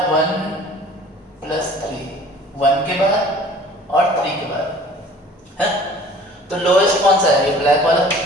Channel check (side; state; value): both; normal; correlation 0.49